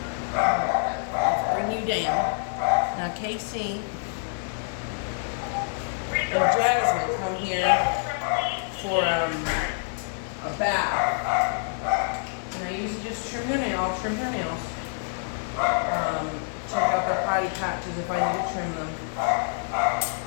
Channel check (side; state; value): right; silent; digital silence